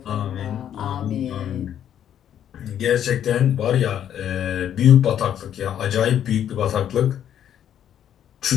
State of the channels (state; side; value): quieter; right; 10.0 dB